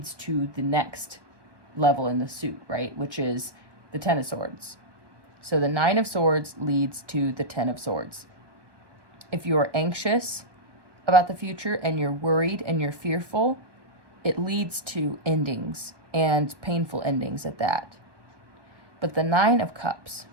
to the next level in the suit, right? Which is the Ten of Swords. So the Nine of Swords leads to the Ten of Swords. If you're anxious about the future and you're worried and you're fearful, it leads to endings, and painful endings at that. But the Nine of Cups,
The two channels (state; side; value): late; left; 1.2 ms